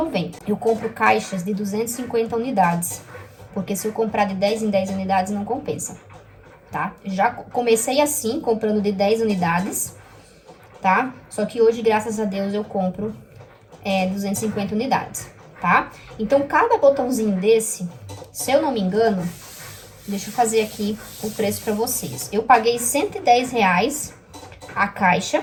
Eu compro caixas de 250 unidades. Porque se eu comprar de 10 em 10 unidades, não compensa, tá? Já comecei assim, comprando de 10 unidades, tá? Só que hoje, graças a Deus, eu compro 250 unidades, tá? Então, cada botãozinho desse, se eu não me engano, deixa eu fazer aqui o preço pra vocês. Eu paguei R$ 110 a caixa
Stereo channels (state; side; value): identical; both; correlation 1.00